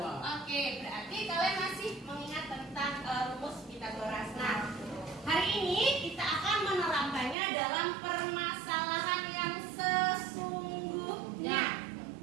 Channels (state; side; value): drops out; left; at 7.4 s